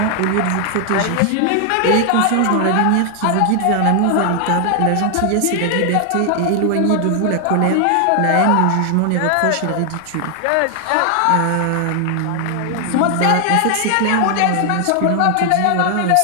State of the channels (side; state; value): both; different; correlation 0.00